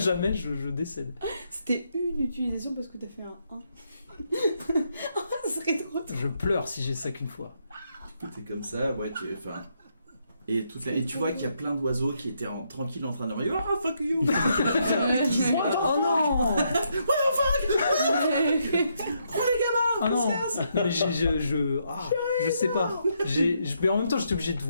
je décède. C'était une utilisation parce que t'as fait un 1. Ce serait trop drôle. Je pleure si j'ai ça qu'une fois. T'es comme ça, ouais, enfin... Et tu vois qu'il y a plein d'oiseaux qui étaient tranquilles en train de dire « Ah, fuck you !» Oh non! Ah non! Mais je sais pas. Mais en même temps, j'étais obligé de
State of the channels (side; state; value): both; inverted; correlation -0.77